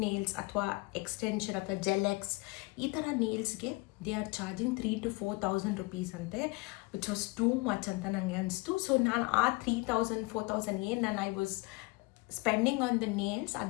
nails ಅಥವಾ ಎಕ್ಸ್ಟೆನ್ಷನ್ ಅಥವಾ ಜೆಲೆಕ್ಸ್ ಈ ಥರ ನೇಲ್ಸ್ಗೆ ದೇ ಆರ್ ಚಾರ್ಜಿಂಗ್ 3,000-4,000 rupees ಅಂತೆ, ವಿಚ್ ವಾಸ್ ಟೂ ಮಚ್ ಅಂತ ನನಗೆ ಅನಿಸ್ತು. ಸೊ ನಾನು ಆ 3,000-4,000 ಏನು ನಾನು I was spending on the nails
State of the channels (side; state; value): right; quieter; 25.7 dB